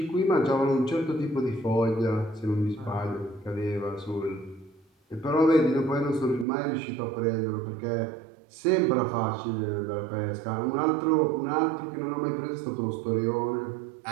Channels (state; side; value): drops out; left; at 6.5 s